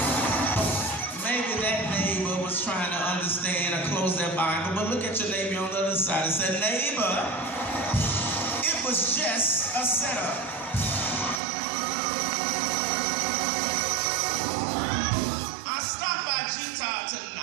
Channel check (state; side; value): drops out; left; at 11.4 s